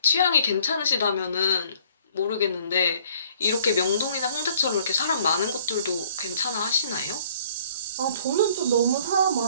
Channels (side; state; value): both; inverted; correlation -0.58